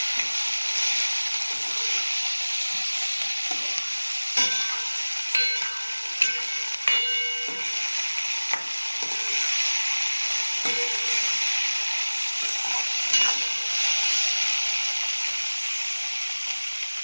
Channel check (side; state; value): both; inverted; correlation -1.00